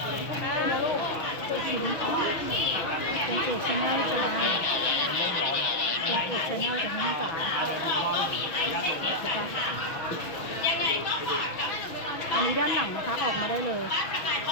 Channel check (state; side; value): late; right; 6.2 ms